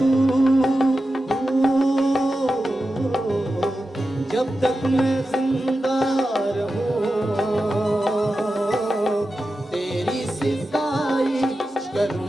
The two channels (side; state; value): both; normal; correlation 0.92